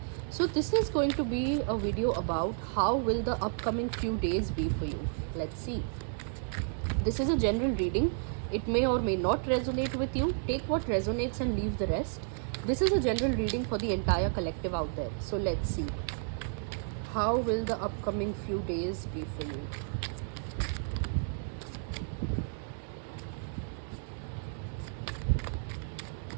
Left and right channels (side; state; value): left; silent; digital silence